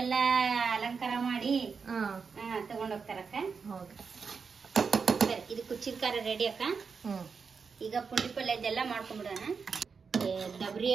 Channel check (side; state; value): left; quieter; 5.5 dB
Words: ಅಲಂಕಾರ ಮಾಡಿ ತಗೊಂಡೋಗ್ತಾರಕ್ಕ. ಇದು ಕುಚ್ಚಿದ ಖಾರ ರೆಡಿ ಅಕ್ಕ. ಈಗ ಪುಂಡಿ ಪಲ್ಯದೆಲ್ಲ ಮಾಡ್ಕೊಂಡ್ಬಿಡೋಣ.